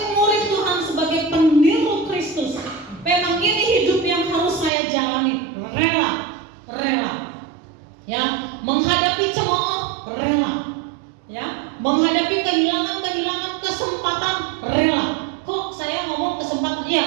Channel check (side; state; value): left; drops out; at 4.7 s